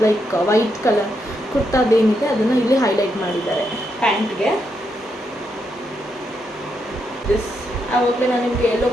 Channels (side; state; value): both; normal; correlation 0.81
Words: ಲೈಕ್ ವೈಟ್ ಕಲರ್ ಕುರ್ತಾದೇನಿದೆ ಅದನ್ನು ಇಲ್ಲಿ ಹೈಲೈಟ್ ಮಾಡಿದ್ದಾರೆ ಪ್ಯಾಂಟ್ಗೆ. ದಿಸ್ ಆವಾಗಲೇ ನಾನು ನಿಮಗೆ ಯೆಲ್ಲೋ